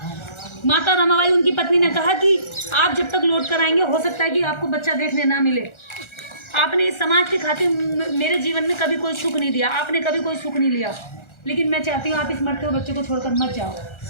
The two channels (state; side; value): late; right; 1.3 ms